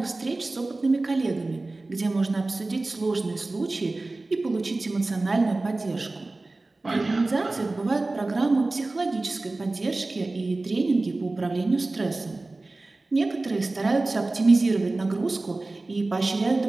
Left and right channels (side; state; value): left; quieter; 3.1 dB